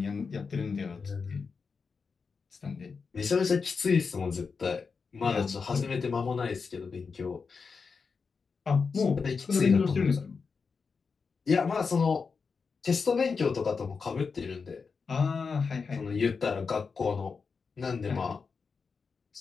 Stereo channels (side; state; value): right; quieter; 5.2 dB